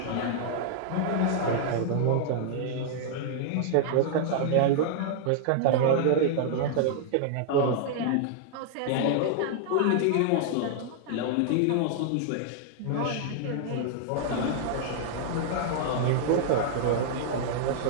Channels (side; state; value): both; different; correlation -0.01